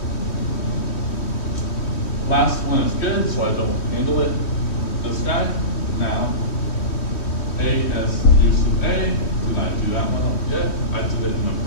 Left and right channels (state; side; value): late; right; 3.1 ms